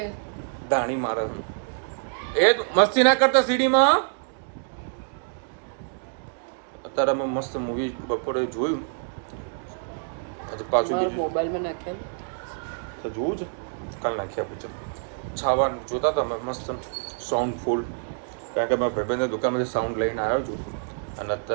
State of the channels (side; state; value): left; silent; digital silence